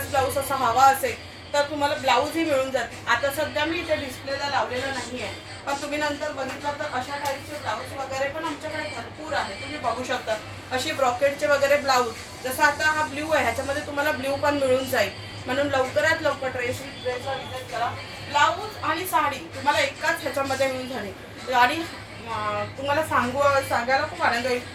ब्लाऊज असा हवा असेल तर तुम्हाला ब्लाऊजही मिळून जाते। आता सध्या मी इथे डिस्प्लेला लावलेलं नाही आहे, पण तुम्ही नंतर बघितलं तर अशा टाईपचे ब्लाऊज वगैरे पण आमच्याकडे भरपूर आहे। तुम्ही बघू शकता अशी ब्रॉकेटचे वगैरे ब्लाऊज, जसं आता हा ब्ल्यू आहे ह्याच्यामध्ये तुम्हाला ब्ल्यू पण मिळून जाईल। म्हणून लवकरात लवकर ड्रेसला विजिट करा। ब्लाऊज आणि साडी तुम्हाला एकाच ह्याच्यामध्ये मिळून झाली। आणि तुम्हाला सांगायला खूप आनंद होईल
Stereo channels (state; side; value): identical; both; correlation 1.00